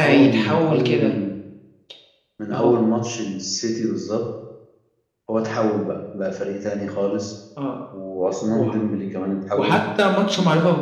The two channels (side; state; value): both; identical; correlation 1.00